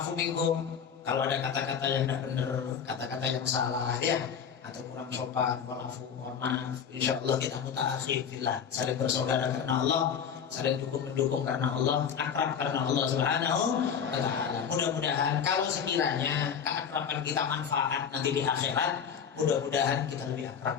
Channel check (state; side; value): quieter; right; 7.3 dB